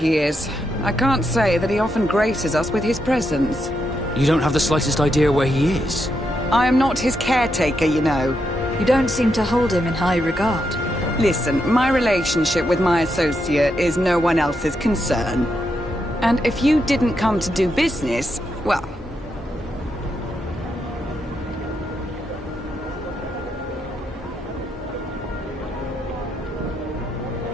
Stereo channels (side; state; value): both; normal; correlation 0.82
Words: is. I can't say that he often graces us with his presence. You don't have the slightest idea where he is? I am not his caretaker, you know. You don't seem to hold him in high regard. Listen, my relationship with my associate is no one else's concern. And if you didn't come to do business, well...